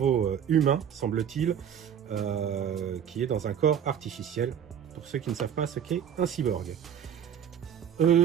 humain, semble-t-il, qui est dans un corps artificiel, pour ceux qui ne savent pas ce qu'est un cyborg.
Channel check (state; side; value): quieter; left; 8.6 dB